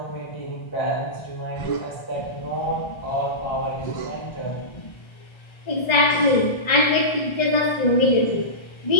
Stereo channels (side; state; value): right; late; 1.3 ms